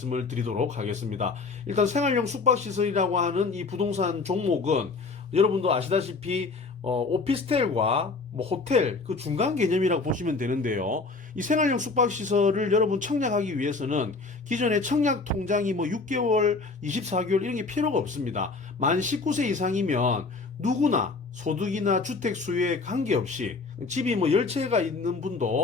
드리도록 하겠습니다. 일단 생활용 숙박시설이라고 하는 이 부동산 종목은 여러분도 아시다시피 오피스텔과 뭐 호텔 그 중간 개념이라고 보시면 되는데요. 이 생활용 숙박시설을 여러분 청약하기 위해서는 기존의 청약 통장이 뭐 6개월, 24개월 이런 게 필요가 없습니다. 만 19세 이상이면 누구나 소득이나 주택 수요에 관계없이, 집이 뭐 10채가 있는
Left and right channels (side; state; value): right; quieter; 4.1 dB